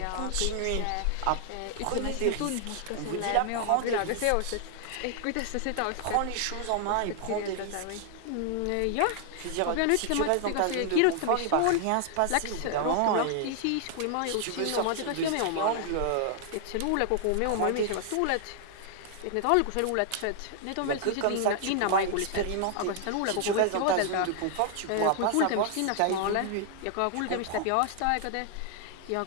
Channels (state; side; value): different; both; correlation 0.00